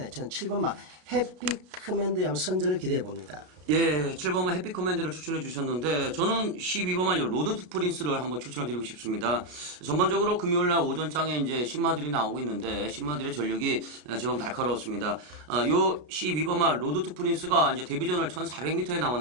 저는 7번마 해피 커맨드에 한번 선전을 기대해 봅니다. 예, 7번만 해피 커맨드를 추천해 주셨는데 저는 12번만 로드 투 프린스를 한번 추천을 드리고 싶습니다. 전반적으로 금요일날 오전장에 이제 신마들이 나오고 있는데 신마들의 전력이 제법 날카로웠습니다. 요 12번만 로드 투 프린스가 이제 데뷔전을 1400m에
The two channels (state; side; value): late; left; 33 ms